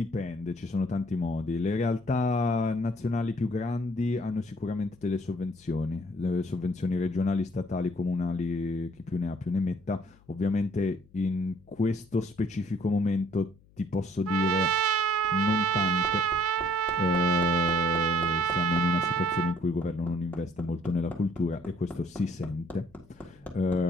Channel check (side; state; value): left; noise; hum, 28 dB below the sound